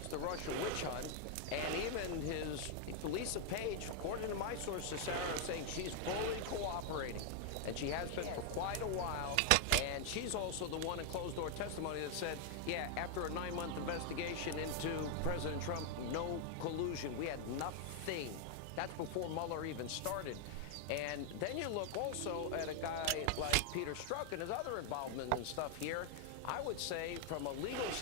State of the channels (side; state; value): both; different; correlation 0.00